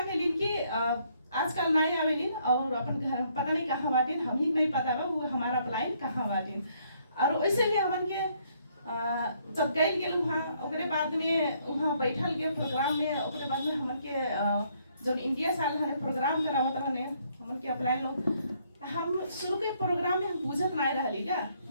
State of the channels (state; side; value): inverted; both; correlation -0.69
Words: केलिन कि आजकल नहीं आवेलिन और अपन घर पता नहीं कहाँ बाटिन, हम ही नहीं पता बा वो हमारा अपलाइन कहाँ बाटिन। और वैसे भी हमन के जब गए गेल वहाँ ओकरे बाद में वहाँ बैठल के प्रोग्राम में ओकरे बाद में हमन के जो इंडिया साल हने प्रोग्राम करावत रहने हमन के अप्लाई लोग। हम शुरू के प्रोग्राम में हम पूछत नहीं रहली का